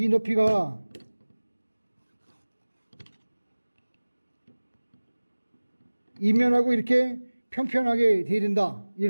높이가 이면하고 이렇게 평평하게 돼야 된다,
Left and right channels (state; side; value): inverted; both; correlation -1.00